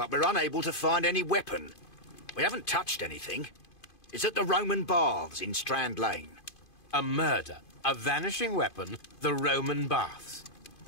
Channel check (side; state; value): right; late; 2.5 ms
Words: we're unable to find any weapon. We haven't touched anything. It's at the Roman Baths in Strand Lane. A murder, a vanishing weapon, the Roman Baths.